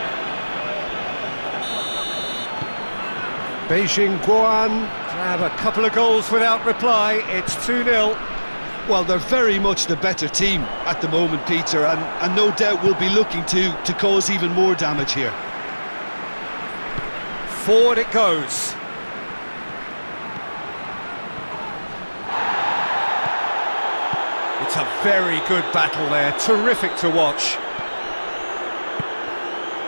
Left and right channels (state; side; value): inverted; both; correlation -1.00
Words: Beijing Guoan grab a couple of goals without reply. It's 2-0. Well, they're very much the better team at the moment, Peter, and no doubt will be looking to cause even more damage here. Forward it goes. It's a very good battle there, terrific to watch.